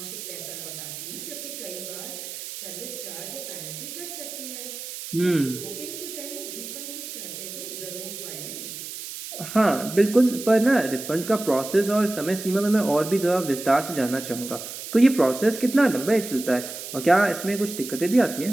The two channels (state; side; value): noise; right; hiss, 9 dB below the sound